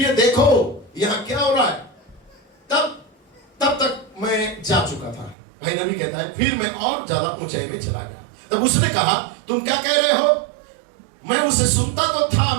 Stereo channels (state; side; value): drops out; left; at 5.4 s